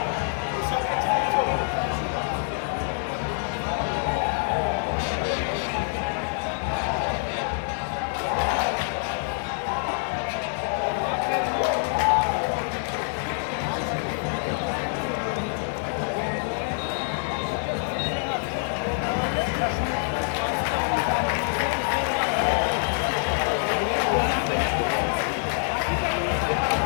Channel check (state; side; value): silent; right; 61 dB below the other